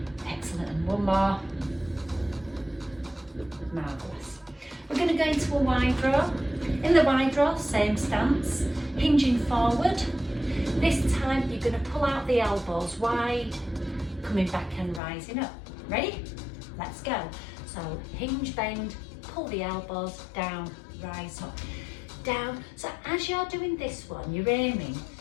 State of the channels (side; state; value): right; drops out; at 15.0 s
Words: Excellent, and 1 more. Marvellous. We're going to go into a wide row. In the wide row, same stance, hinging forward. This time you're going to pull out the elbows wide, coming back and rising up. Ready? Let's go. So hinge, bend, pull the elbows down, rise up, down. So as you're doing this one, you're aiming